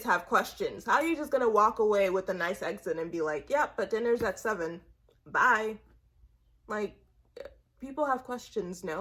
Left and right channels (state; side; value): identical; both; correlation 1.00